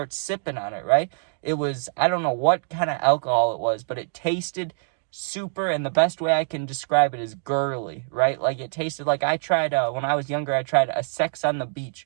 sipping on it, right? It was, I don't know what kind of alcohol it was, but it tasted super, and the best way I can describe it is girly, right? Like, it tasted like I tried, when I was younger, I tried a Sex on the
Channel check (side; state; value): left; silent; digital silence